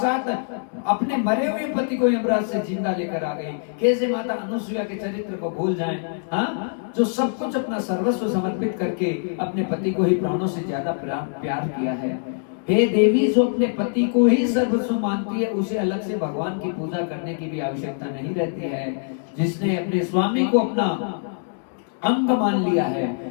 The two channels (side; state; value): right; silent; digital silence